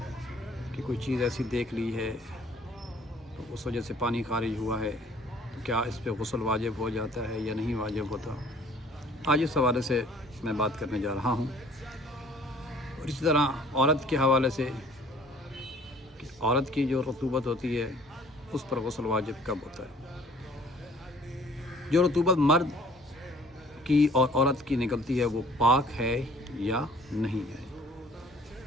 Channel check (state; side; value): normal; both; correlation 0.54